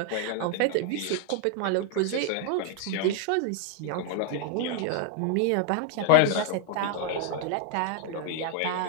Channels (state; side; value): different; both; correlation 0.00